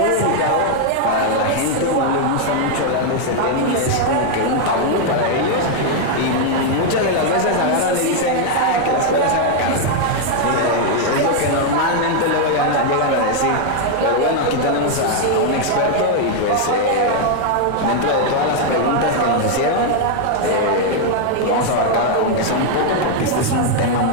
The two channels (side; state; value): both; different; correlation 0.00